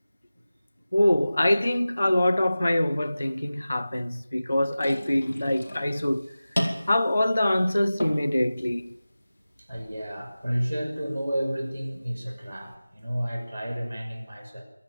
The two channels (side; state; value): both; inverted; correlation -0.96